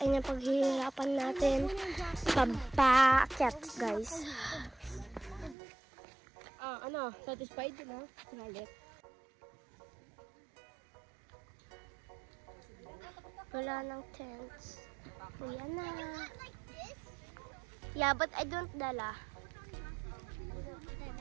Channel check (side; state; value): left; drops out; at 5.6 s